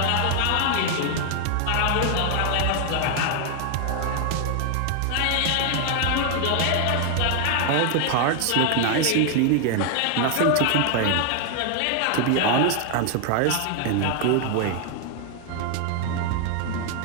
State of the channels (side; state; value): both; different; correlation 0.00